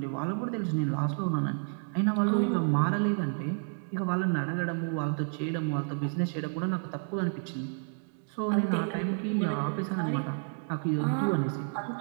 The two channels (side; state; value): left; silent; 58 dB below the other